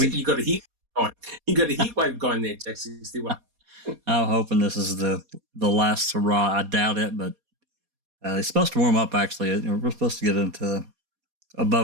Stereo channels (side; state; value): left; late; 4.2 ms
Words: got a heat going. You got a heat wave going there, Jack61. I'm hoping this is the last hurrah. I doubt it, but it's supposed to warm up, actually. We're supposed to get into